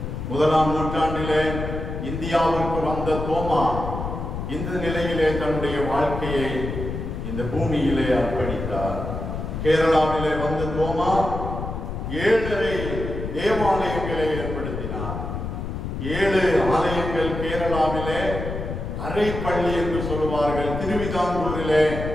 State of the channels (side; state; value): left; noise; rumble, 5 dB below the sound